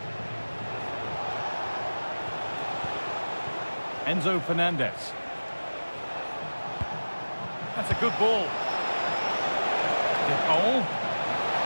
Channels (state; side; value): inverted; both; correlation -1.00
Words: Enzo Fernandez. That's a good ball. DePaul.